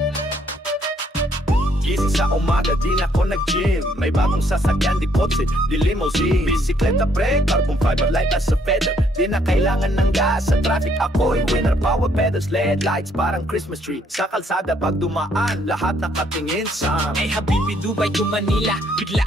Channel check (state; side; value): normal; both; correlation 0.68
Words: Gising sa umaga, di na ako nag-gym. May bagong sasakyan, di kotse, di limousine. Bisikleta pre, carbon fiber light as a feather. Di na kailangan ng gas, sa traffic ako'y winner. Power pedals, LED lights, parang Christmas tree. Sa kalsada pag dumaan, lahat nakatingin sa Hey Habibi, Dubai to Manila. Bigla